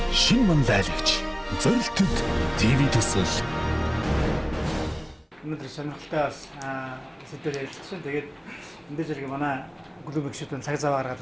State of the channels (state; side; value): identical; both; correlation 1.00